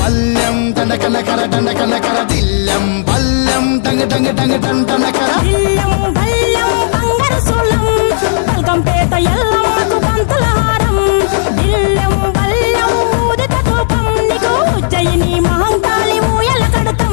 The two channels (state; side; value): silent; right; digital silence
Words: దండకనకర దండకనకర, దిల్లెం పల్లెం డంగ డంగ డంగ డండనకర, దిల్లం బల్లం బంగారు సోలం, బల్కంపేట ఎల్లమ్మకు పంతుల హారం, దిల్లం బల్లం ఊదిత ధూపం, నీకు ఉజ్జయిని మహంకాళి ఊయల